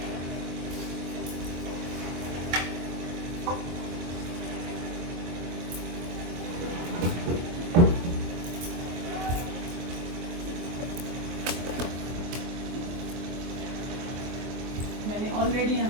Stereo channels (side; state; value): left; late; 23 ms